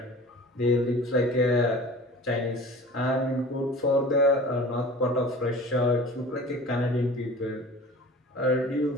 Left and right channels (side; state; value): both; normal; correlation 0.41